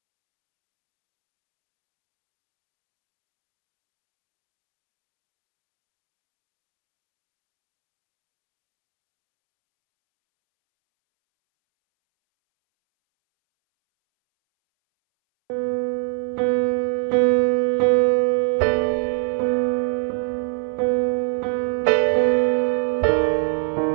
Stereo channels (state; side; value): silent; left; 63 dB below the other